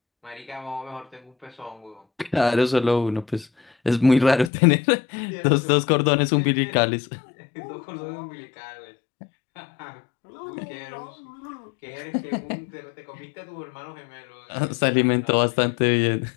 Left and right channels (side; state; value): right; drops out; at 4.5 s